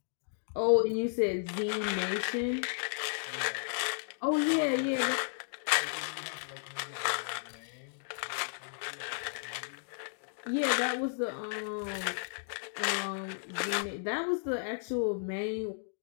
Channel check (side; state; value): right; silent; digital silence